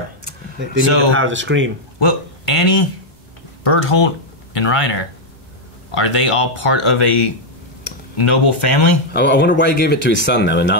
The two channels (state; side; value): normal; both; correlation -0.01